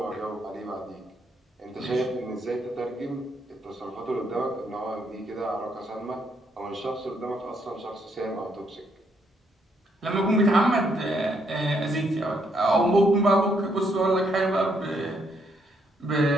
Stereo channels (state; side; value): normal; both; correlation 0.73